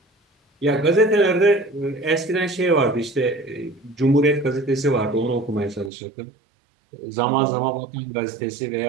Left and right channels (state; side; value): drops out; left; at 5.9 s